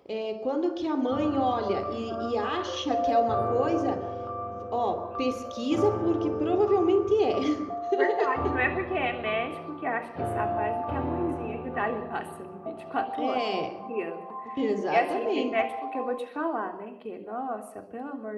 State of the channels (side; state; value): both; identical; correlation 1.00